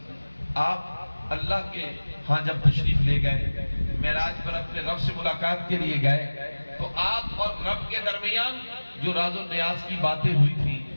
آپ اللہ کے ہاں جب تشریف لے گئے، معراج پر اپنے رب سے ملاقات کے لیے گئے، تو آپ اور رب کے درمیان جو راز و نیاز کی باتیں ہوئی تھی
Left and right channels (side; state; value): both; inverted; correlation -1.00